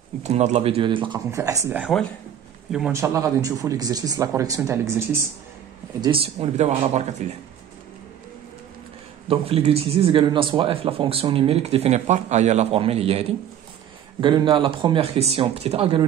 نتمنى هاد لا فيديو اللي تلقاكم في احسن الاحوال. اليوم ان شاء الله غادي نشوفوا ليكزرسيس لا كوريكسيون تاع ليكزرسيس 10 ونبداو على بركه الله. دونك في ليكزرسيس قالوا لنا سوا اف لا فونكسيون نيميريك ديفيني بار هي لا فورميل هي هادي. قالوا لنا لا بروميير كيسيون بتيت ا قالوا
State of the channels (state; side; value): quieter; left; 9.9 dB